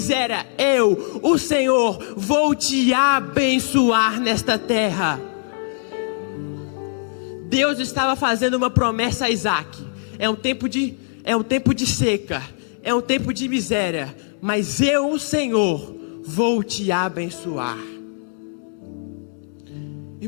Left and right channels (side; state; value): right; silent; digital silence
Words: eu, o Senhor, vou te abençoar nesta terra. Deus estava fazendo uma promessa a Isaque. É um tempo de seca, é um tempo de miséria, mas eu, o Senhor, vou te abençoar.